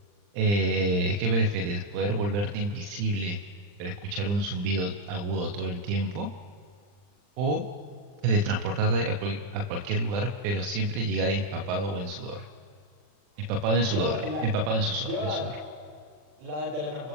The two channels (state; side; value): late; left; 40 ms